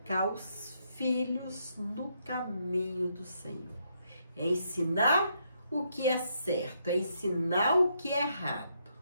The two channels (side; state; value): both; inverted; correlation -0.76